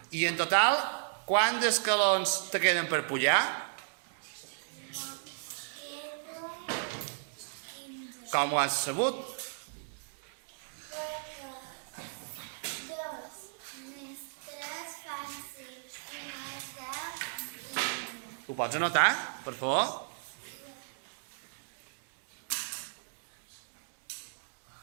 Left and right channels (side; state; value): left; silent; digital silence